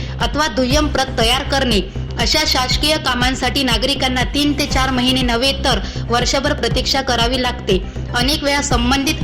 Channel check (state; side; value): identical; both; correlation 1.00